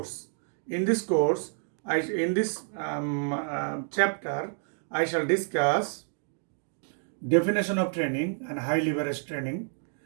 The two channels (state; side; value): silent; left; 59 dB below the other